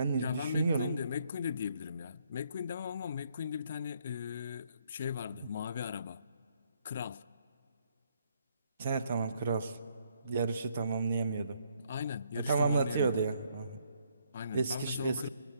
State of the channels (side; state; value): both; inverted; correlation -0.70